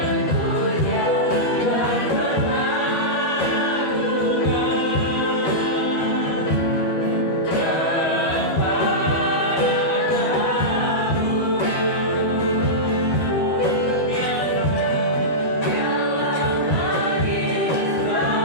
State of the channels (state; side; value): late; right; 13 ms